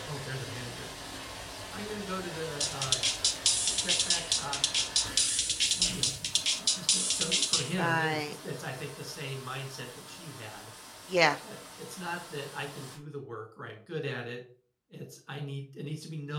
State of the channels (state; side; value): identical; both; correlation 1.00